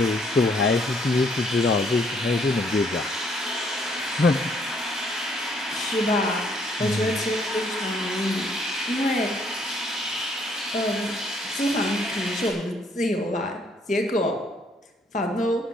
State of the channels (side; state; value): both; normal; correlation 0.67